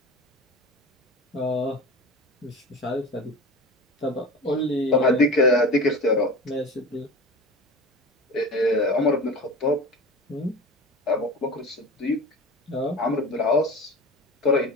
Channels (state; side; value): normal; both; correlation 0.32